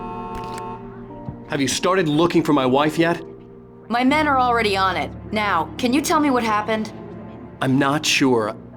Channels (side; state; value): both; identical; correlation 1.00